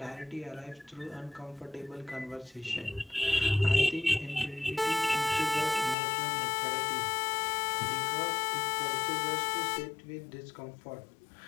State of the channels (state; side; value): drops out; right; at 6.0 s